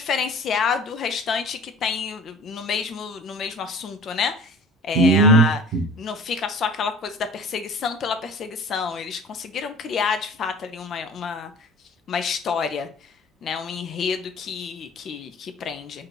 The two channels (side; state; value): both; normal; correlation 0.43